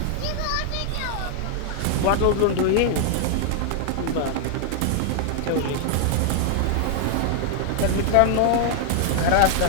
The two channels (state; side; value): different; both; correlation 0.00